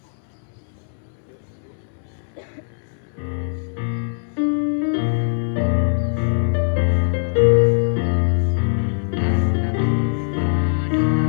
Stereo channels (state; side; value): silent; right; 62 dB below the other